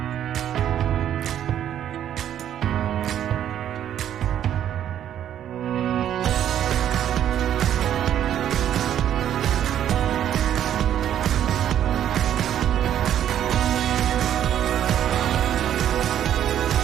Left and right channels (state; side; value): quieter; left; 10.5 dB